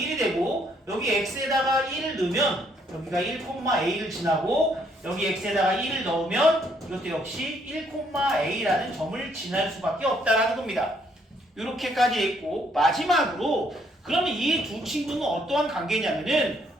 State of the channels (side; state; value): both; normal; correlation 0.69